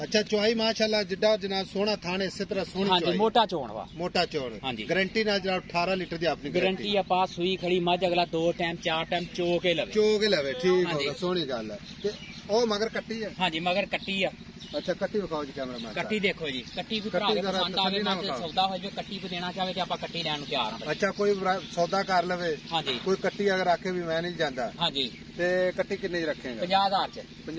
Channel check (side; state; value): both; identical; correlation 1.00